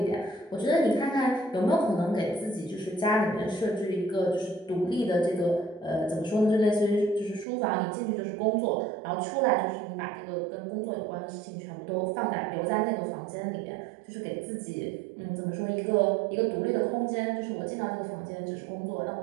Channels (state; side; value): drops out; left; at 7.5 s